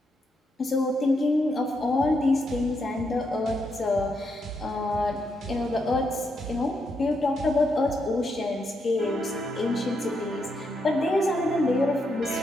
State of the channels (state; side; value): normal; both; correlation 0.80